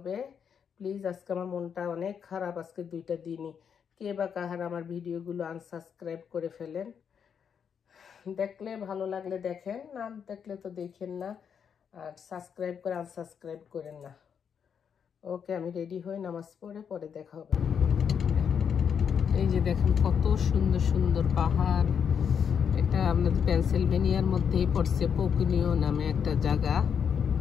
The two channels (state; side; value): quieter; right; 7.3 dB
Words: প্লিজ, আজকে আমার মনটা অনেক খারাপ, আজকে 2টা দিনই। কে বা কাহার আমার ভিডিওগুলো আনসাবস্ক্রাইব করে ফেলেন। দেখলে ভালো লাগলে দেখেন, না দেখলে তো দেখেন না। আর সাবস্ক্রাইব করে আনসাবস্ক্রাইব করেন না। ওকে, আমি রেডি হই, নামাজ পড়ে দেখা হবে। এই যে দেখেন কত সুন্দর সুন্দর পাহাড়। এটা আমাদের পেনসিলভেনিয়ার মধ্যেই পড়ছে, পোকুনিও নামে একটা জায়গা।